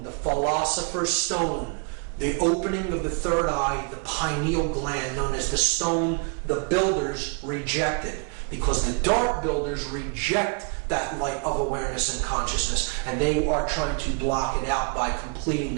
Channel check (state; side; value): quieter; left; 35.8 dB